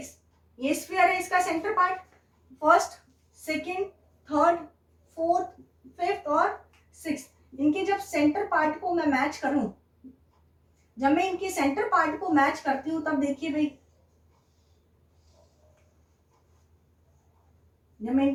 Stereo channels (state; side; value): identical; both; correlation 1.00